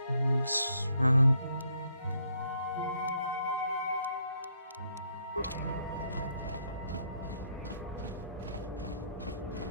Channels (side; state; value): both; inverted; correlation -0.71